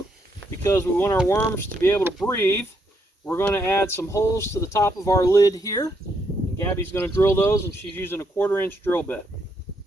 because we want our worms to be able to breathe, we're going to add some holes to the top of our lid here. And Gabby's going to drill those, and she's using a 1/4-inch drill bit.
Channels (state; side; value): normal; both; correlation 0.76